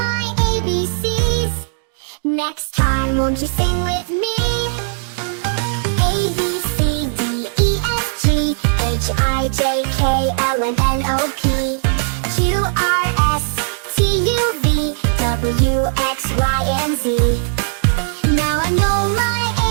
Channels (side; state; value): left; silent; digital silence